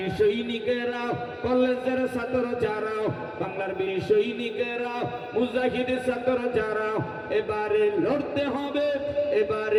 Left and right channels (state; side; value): identical; both; correlation 1.00